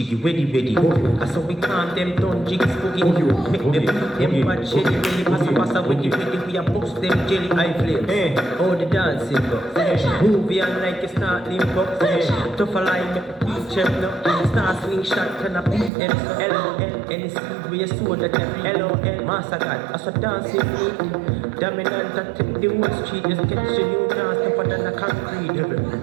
weddy weddy. I saw we calm them down, jiggy spooky. Make them beat them bad shelly belly, passa passa weddy weddy. We a bust them jelly eye flame. Oh the dancing go. Movie on like it's not limbo. Tough a line, make the beat check now. Star swing shot, can I beat them so LOL. Any speed where you saw that every LOL. Master God, I saw dancing feet. Dominant, I take the whole street. Just catch a new dance, tougher than a concrete.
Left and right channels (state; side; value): drops out; left; at 15.9 s